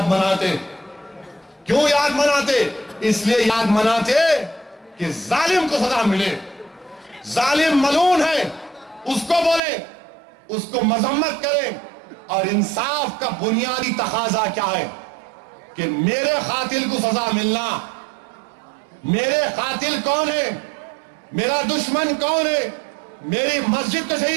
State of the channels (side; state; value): left; drops out; at 9.6 s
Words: मनाते, क्यों याद मनाते? इसलिए याद मनाते कि जालिम को सजा मिले। जालिम मलून है, उसको बोले, उसको मजम्मत करें। और इंसाफ का बुनियादी तकाजा क्या है कि मेरे कातिल को सजा मिलना। मेरे कातिल कौन है, मेरा दुश्मन कौन है, मेरी मस्जिद को